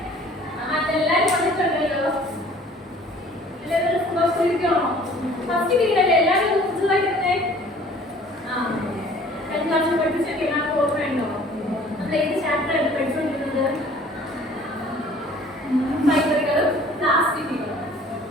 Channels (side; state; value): both; normal; correlation 0.52